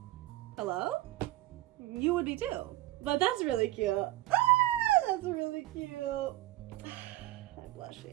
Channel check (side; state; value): left; quieter; 16.6 dB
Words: Hello? You would be too. But that's really cute. Ah, that's really cute. I'm